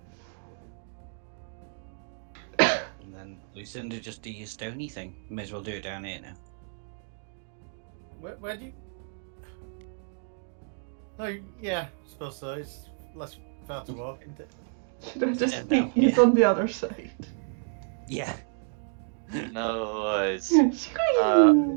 And then Lucinda, just do your stony thing. May as well do it down here now. Where do you? Oh yeah, I suppose so. It's less far to walk, isn't it? Should I just Yeah, think no, he's yeah. on the other side? Yeah. No worries. Squeeze! Let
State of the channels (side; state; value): left; silent; 58 dB below the other